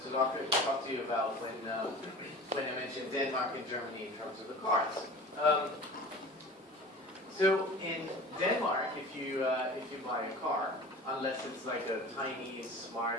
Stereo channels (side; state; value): both; normal; correlation 0.39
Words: to talk to you about when I mentioned Denmark and Germany in terms of the cars. So in Denmark, if you buy a car, unless it's like a tiny